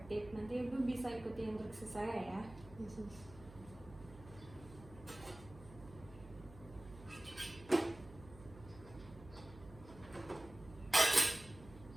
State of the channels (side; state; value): right; noise; hum, 17 dB below the sound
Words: Nanti Ibu bisa ikuti instruksi saya ya.